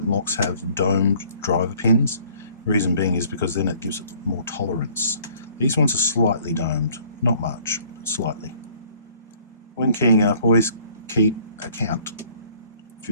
locks have domed driver pins. The reason being is because then it gives it more tolerance. These ones are slightly domed, not much, but slightly. When keying up, always keep a count. If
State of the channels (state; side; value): inverted; both; correlation -0.58